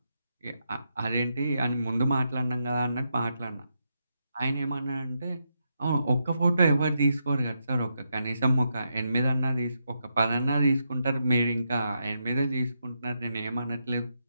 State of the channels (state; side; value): inverted; both; correlation -0.83